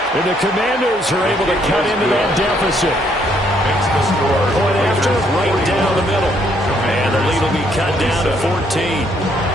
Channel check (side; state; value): both; normal; correlation 0.69